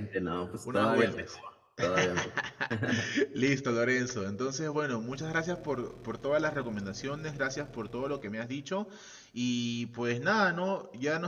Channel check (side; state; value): both; identical; correlation 1.00